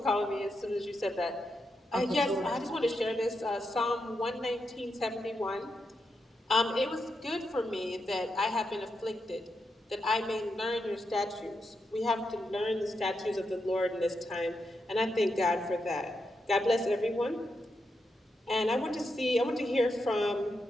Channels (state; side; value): normal; both; correlation 0.85